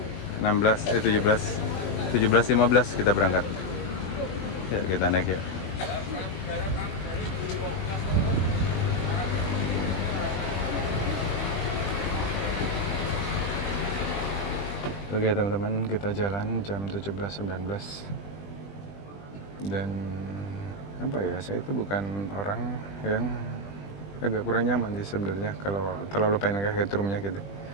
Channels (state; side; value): late; right; 20 ms